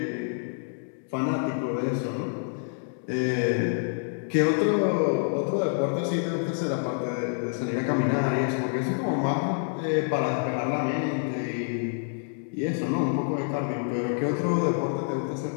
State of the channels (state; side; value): silent; right; digital silence